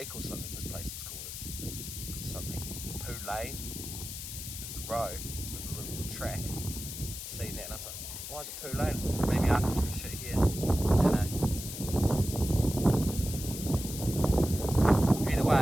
or something this place is called. It's something Poo Lane. There's a road, there's a little track. Seen that and I was like, why is it Poo Lane? Like, maybe Arthur took a shit here. I don't know. Either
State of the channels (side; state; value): left; noise; hiss, 8 dB below the sound